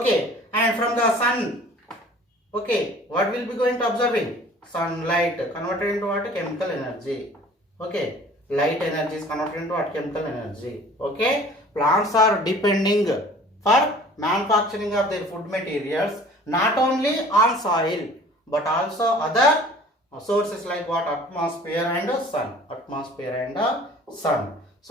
And from the sun, okay, what will be going to observing? Sunlight converted into what? Chemical energy. Okay. Light energy is converted into what? Chemical energy. Okay. Plants are depending for manufacturing of their food materials not only on soil but also other sources like what? Atmosphere and sun.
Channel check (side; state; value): both; normal; correlation 0.48